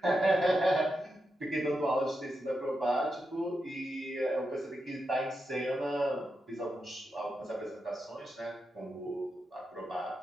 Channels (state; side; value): normal; both; correlation 0.87